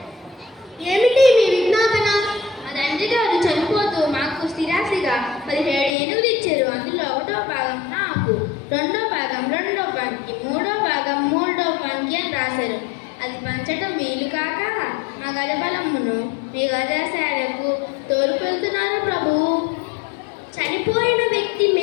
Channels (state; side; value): drops out; right; at 5.9 s